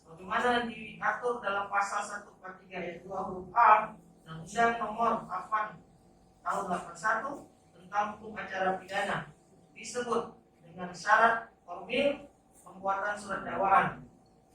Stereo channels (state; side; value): identical; both; correlation 1.00